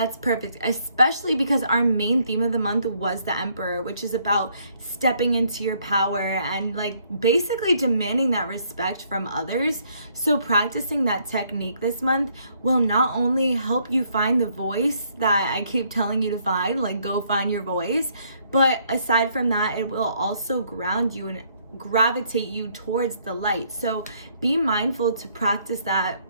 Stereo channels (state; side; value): inverted; both; correlation -0.68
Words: perfect, especially because our main theme of the month was the Emperor, which is about stepping into your power and like basically demanding that respect from others. So practicing that technique this month will not only help you find the voice that I keep telling you to find, like go find your voice, but aside from that, it will also ground you and gravitate you towards the light. So be mindful to practice that